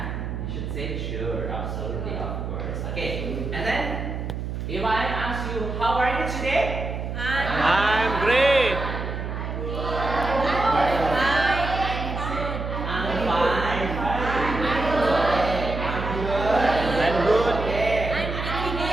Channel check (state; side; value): noise; right; hum, 5 dB below the sound